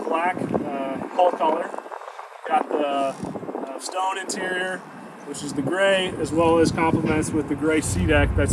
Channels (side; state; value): both; identical; correlation 1.00